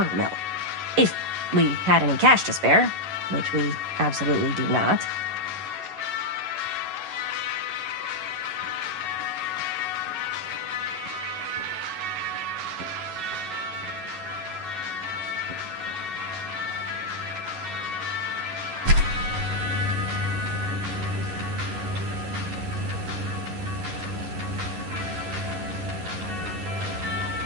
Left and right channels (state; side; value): late; left; 11 ms